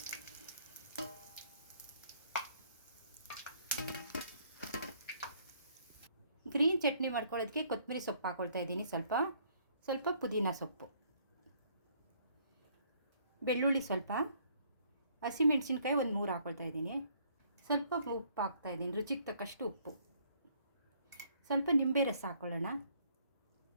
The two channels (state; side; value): inverted; both; correlation -0.64